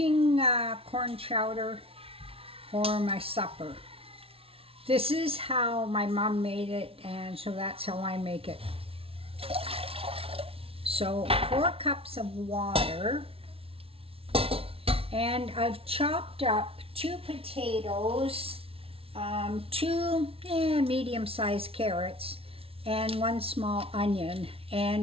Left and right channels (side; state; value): left; late; 0.27 ms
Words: corn chowder for my supper. This is how my mom made it, and so that's how I make it. So 4 cups of water, and I've chopped up 2 potatoes, 2 medium-sized carrots, and 1 small onion.